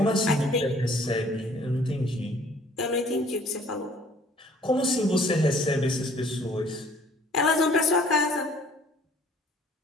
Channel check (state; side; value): normal; both; correlation 0.56